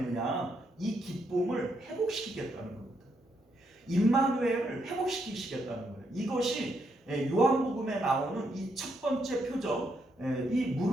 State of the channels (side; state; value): both; normal; correlation 0.77